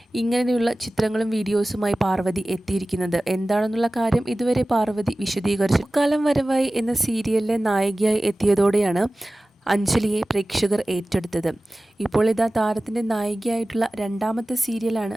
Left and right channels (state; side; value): normal; both; correlation 0.97